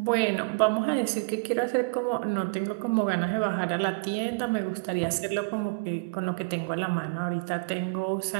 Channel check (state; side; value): quieter; left; 34.5 dB